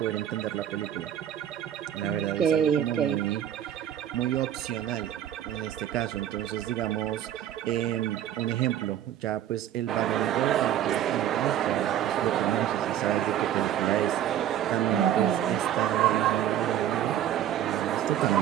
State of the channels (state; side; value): quieter; left; 10.9 dB